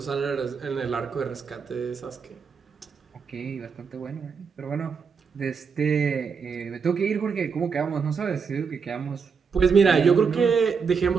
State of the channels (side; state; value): left; quieter; 5.8 dB